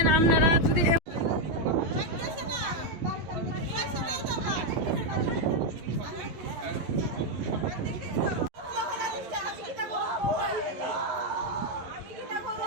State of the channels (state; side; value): late; left; 11 ms